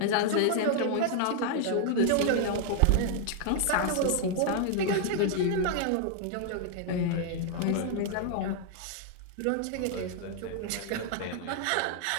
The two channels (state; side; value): different; both; correlation 0.00